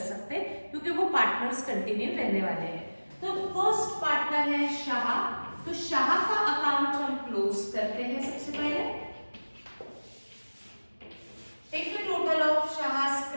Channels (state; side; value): inverted; both; correlation -1.00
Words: सकते क्योंकि वो पार्टनर्स कंटिन्यू रहने वाले हैं। तो फर्स्ट पार्टनर है शाह, तो शाह का अकाउंट हम क्लोज करते हैं सबसे पहले।